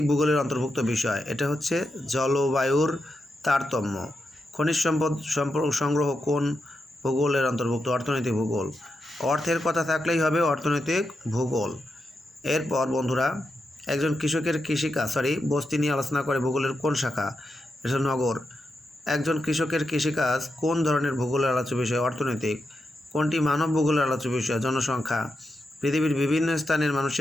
ভূগোলের অন্তর্ভুক্ত বিষয়? এটা হচ্ছে জলবায়ুর তারতম্য। খনিজ সম্পদ সংগ্রহ কোন ভূগোলের অন্তর্ভুক্ত? অর্থনৈতিক ভূগোল। অর্থের কথা থাকলেই হবে অর্থনৈতিক ভূগোল। এরপর বন্ধুরা, একজন কৃষকের কৃষিকাজ বস্তি নিয়ে আলোচনা করে ভূগোলের কোন শাখা? এটা নগর। একজন কৃষকের কৃষিকাজ কোন ধরনের ভূগোলের আলোচ্য বিষয়? অর্থনৈতিক। কোনটি মানব ভূগোলের আলোচ্য বিষয়? জনসংখ্যা। পৃথিবীর বিভিন্ন স্থানের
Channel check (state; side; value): normal; both; correlation 0.86